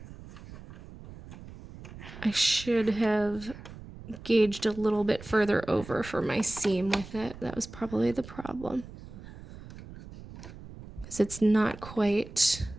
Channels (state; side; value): noise; right; rumble, 15 dB below the sound